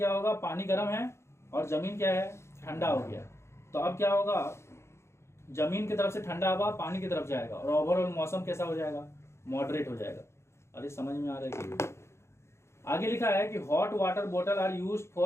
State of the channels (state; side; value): late; right; 0.13 ms